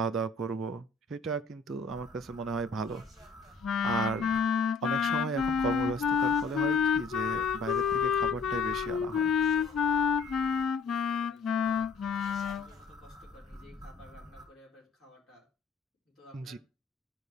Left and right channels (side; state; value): right; quieter; 4.3 dB